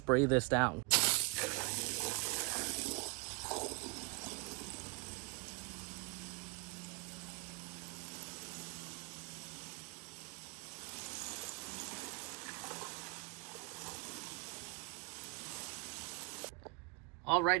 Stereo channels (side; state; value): left; quieter; 29.1 dB